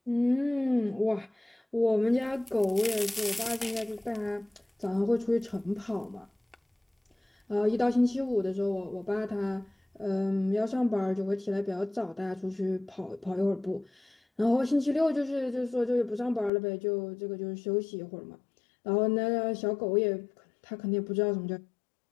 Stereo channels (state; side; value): drops out; right; at 16.5 s